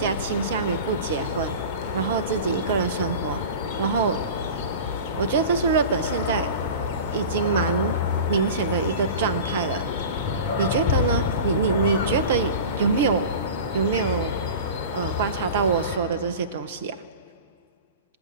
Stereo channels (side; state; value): both; inverted; correlation -0.34